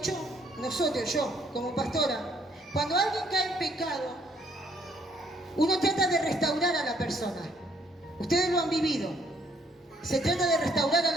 Nosotros, yo, como pastora, cuando alguien cae en pecado, uno trata de restaurar a la persona. Ustedes lo han vivido. Se trata de restaurar a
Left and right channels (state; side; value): normal; both; correlation 0.67